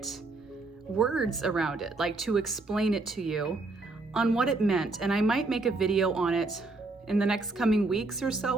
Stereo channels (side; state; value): left; quieter; 3.3 dB